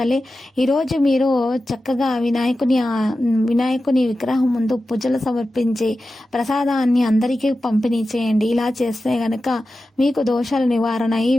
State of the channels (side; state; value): both; normal; correlation 0.93